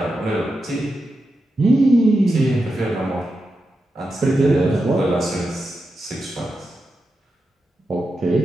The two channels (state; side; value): normal; both; correlation 0.88